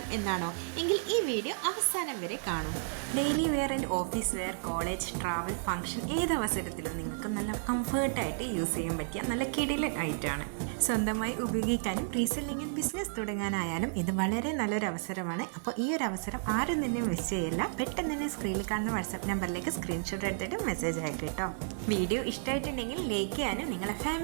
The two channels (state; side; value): silent; left; digital silence